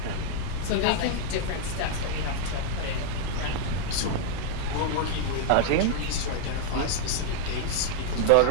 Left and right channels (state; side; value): different; both; correlation 0.00